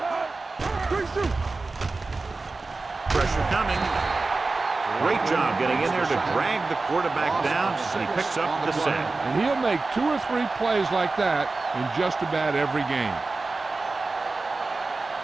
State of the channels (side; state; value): left; quieter; 3.6 dB